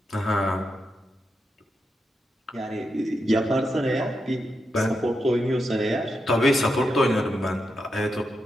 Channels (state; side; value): normal; both; correlation 0.86